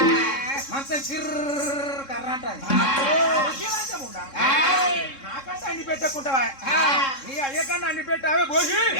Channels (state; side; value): late; right; 3.7 ms